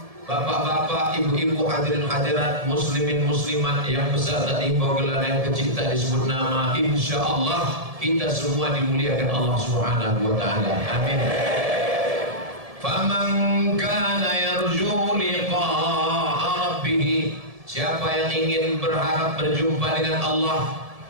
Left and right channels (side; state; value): left; late; 1.7 ms